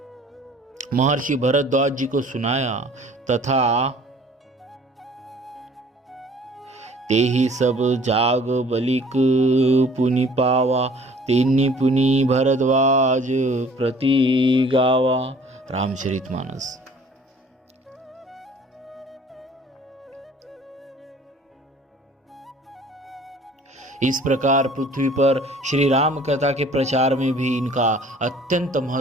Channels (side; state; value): both; normal; correlation 0.52